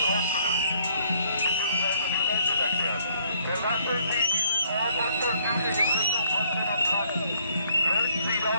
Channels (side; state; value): both; inverted; correlation -0.65